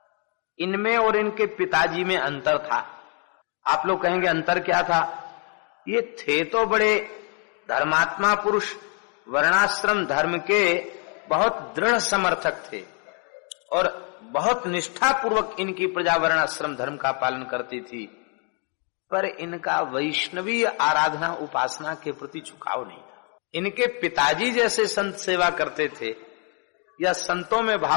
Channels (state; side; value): quieter; right; 37.9 dB